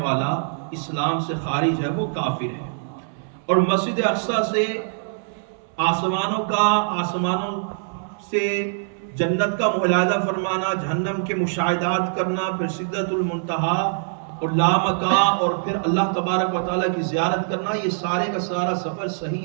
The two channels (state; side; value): silent; left; 62 dB below the other